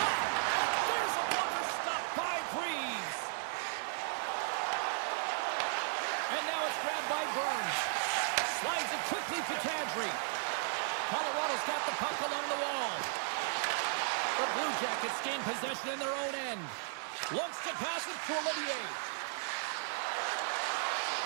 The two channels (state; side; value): silent; left; digital silence